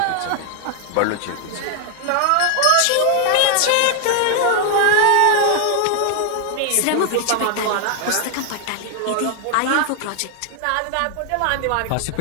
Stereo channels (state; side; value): different; both; correlation 0.00